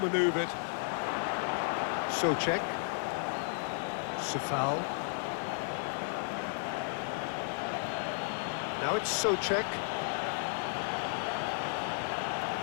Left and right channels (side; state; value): right; silent; digital silence